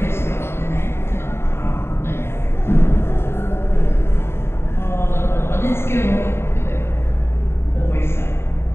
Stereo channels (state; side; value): late; right; 0.12 ms